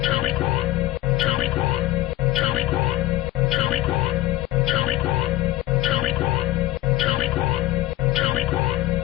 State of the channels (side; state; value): right; quieter; 15.6 dB